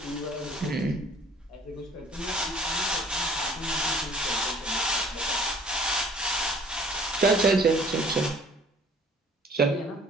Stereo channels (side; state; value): both; normal; correlation 0.54